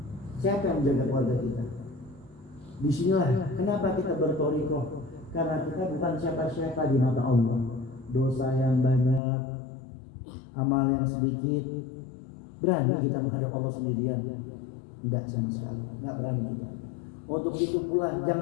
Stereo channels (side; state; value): right; drops out; at 9.2 s